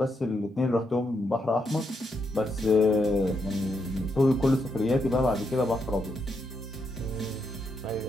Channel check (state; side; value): normal; both; correlation 0.80